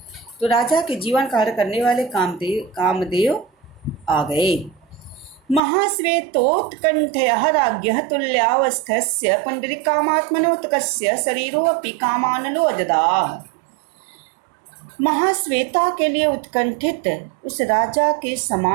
तो राजा के जीवन का हरण करने वाले कामदेव आ गए। महाश्वेतोत्कंठयः राज्ञः तुल्यावस्थस्य पुंडरीकामात्मनोत्कस्य शरीरोऽपि कामानलो अजदाह। महाश्वेता के लिए उत्कंठित उस राजा के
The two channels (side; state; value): left; drops out; at 5.6 s